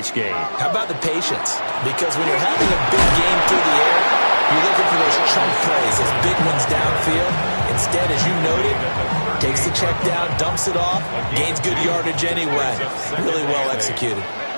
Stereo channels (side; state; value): both; inverted; correlation -1.00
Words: game. How about the patience? Because when you're having a big game through the air, you're looking for those chunk plays, those big ones downfield. Instead, as you noted, takes the check down, dumps it off, gains good yardage anyway. Really well executed.